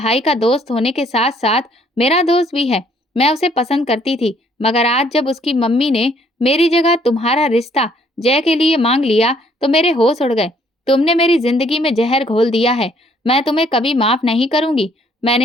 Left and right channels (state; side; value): normal; both; correlation 0.64